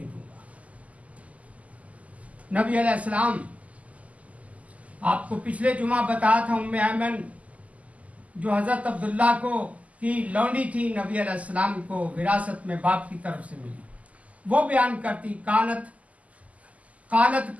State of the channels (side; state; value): left; late; 0.071 ms